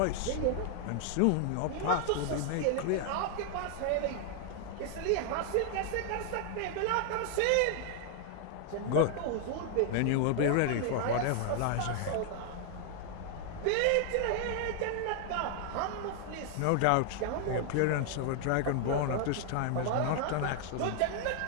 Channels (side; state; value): both; different; correlation 0.00